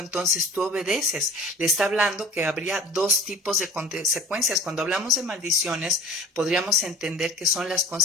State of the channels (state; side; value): normal; both; correlation 0.43